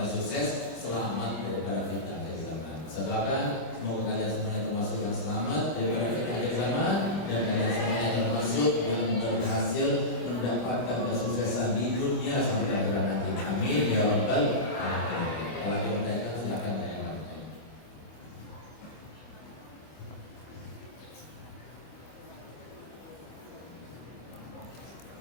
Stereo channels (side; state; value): right; late; 25 ms